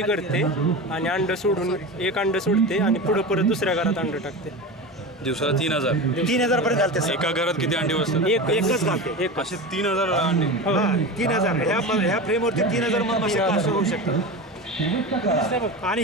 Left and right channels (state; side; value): normal; both; correlation 0.26